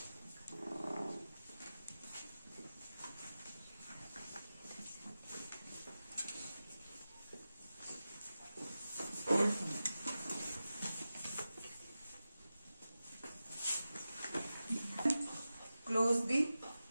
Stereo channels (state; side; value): inverted; both; correlation -0.93